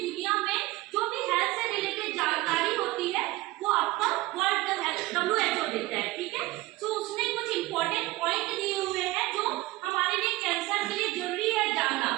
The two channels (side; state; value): left; quieter; 19.4 dB